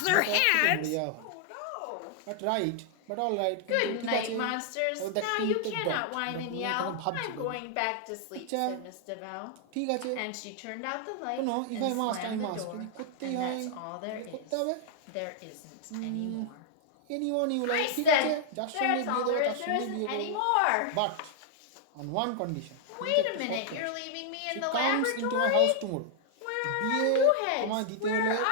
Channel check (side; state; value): both; different; correlation -0.01